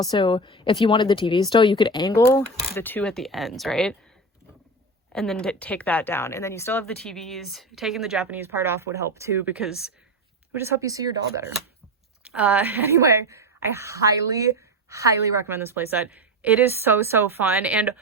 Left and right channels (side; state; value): both; normal; correlation 0.20